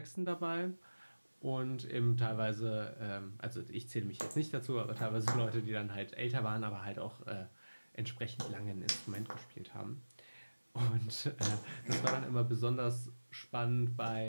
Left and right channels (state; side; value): inverted; both; correlation -1.00